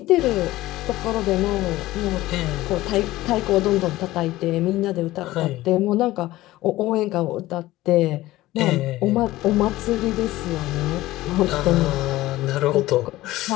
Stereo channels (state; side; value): quieter; right; 17.0 dB